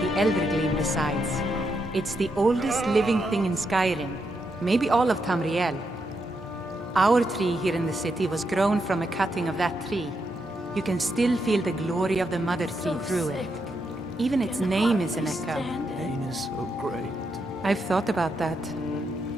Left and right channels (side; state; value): both; normal; correlation 0.82